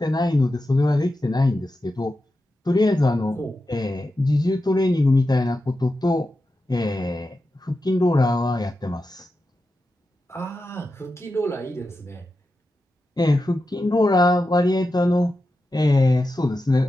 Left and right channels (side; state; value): both; normal; correlation 0.90